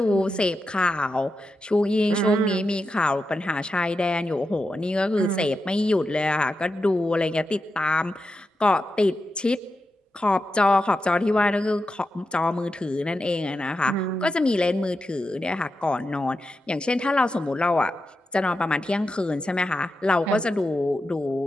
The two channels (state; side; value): normal; both; correlation 0.88